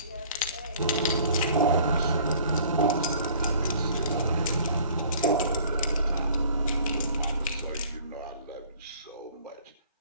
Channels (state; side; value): inverted; both; correlation -0.51